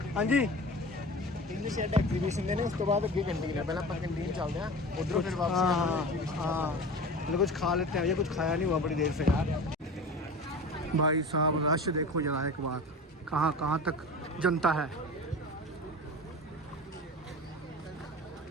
हाँ जी इंग्लिश एग्जीबिशन देने उस तो बाद अगे कैंटीन है, पहले अपन कैंटीन चलते हैं उधरों फिर वापस। हाँ मतलब कुछ खा लेते हैं, ये कुछ खाया नहीं हुआ बड़ी देर से यार। भाई साहब रश देखो जरा एक बार, कहाँ कहाँ तक जनता है।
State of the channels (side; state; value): both; normal; correlation 0.34